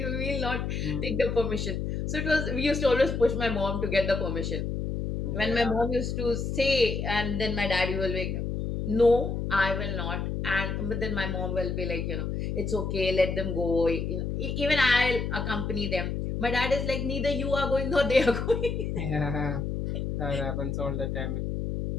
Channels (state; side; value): noise; left; hum, 2 dB below the sound